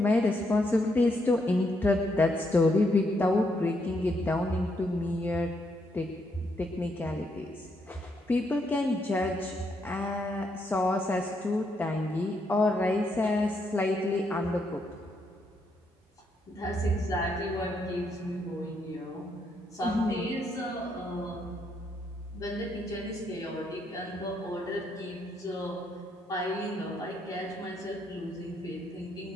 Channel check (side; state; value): both; normal; correlation 0.76